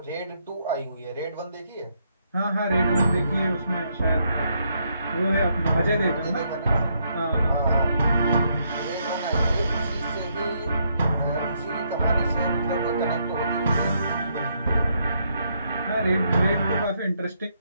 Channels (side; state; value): both; inverted; correlation -0.75